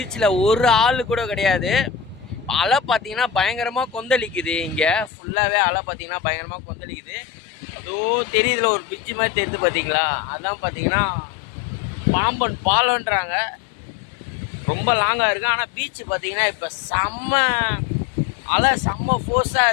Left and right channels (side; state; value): right; drops out; at 5.1 s